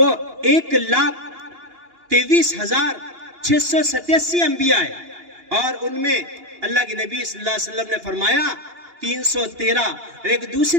1,23,687 انبیاء ہے، اور ان میں اللہ کے نبی صلی اللہ علیہ وسلم نے فرمایا 313۔ اور ایک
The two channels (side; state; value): left; late; 2.8 ms